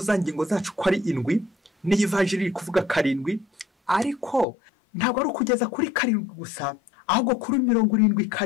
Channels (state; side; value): drops out; right; at 4.5 s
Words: za ngingo zacu ko ari 7, ni ivanjiri kuvuga 7, ariko ntabwo ari kugeza kuri 7 gusa, ahubwo kuri